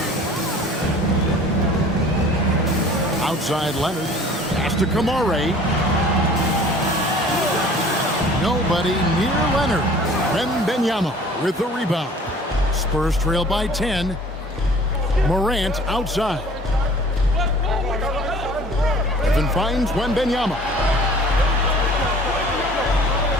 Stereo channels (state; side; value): normal; both; correlation 0.49